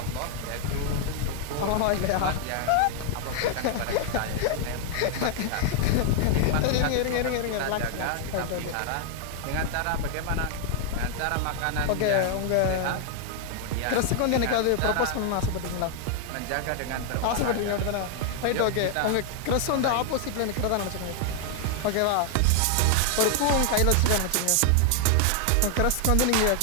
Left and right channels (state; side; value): different; both; correlation 0.00